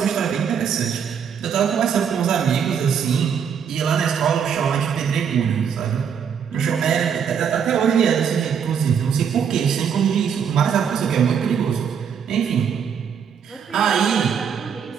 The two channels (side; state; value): left; quieter; 7.4 dB